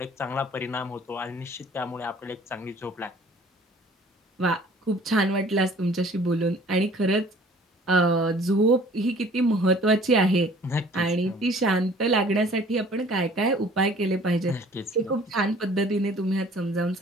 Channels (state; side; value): normal; both; correlation 0.52